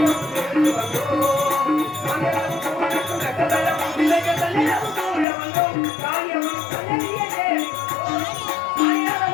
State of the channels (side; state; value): right; drops out; at 5.2 s